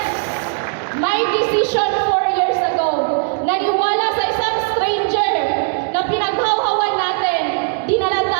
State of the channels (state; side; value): silent; left; digital silence